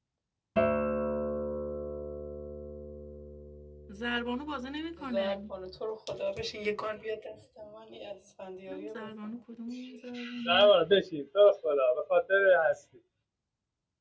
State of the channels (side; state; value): both; identical; correlation 1.00